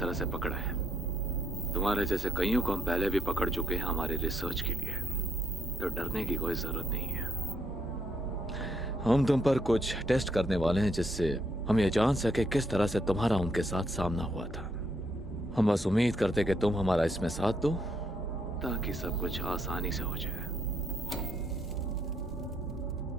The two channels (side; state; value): both; normal; correlation 0.74